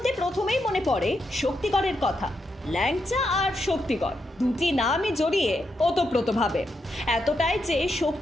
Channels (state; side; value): normal; both; correlation 0.83